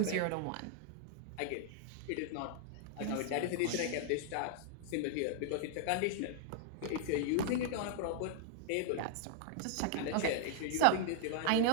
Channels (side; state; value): both; different; correlation -0.01